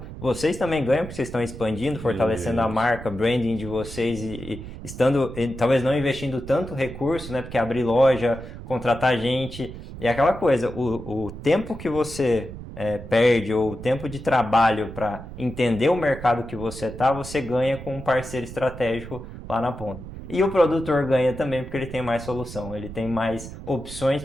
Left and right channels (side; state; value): right; noise; rumble, 12 dB below the sound